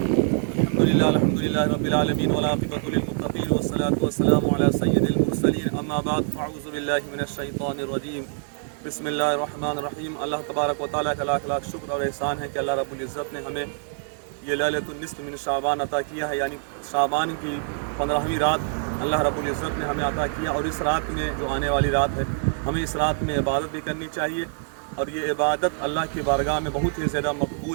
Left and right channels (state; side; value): silent; left; 59 dB below the other